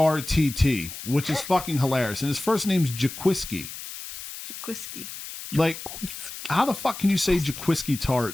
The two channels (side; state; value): left; noise; hiss, 11 dB below the sound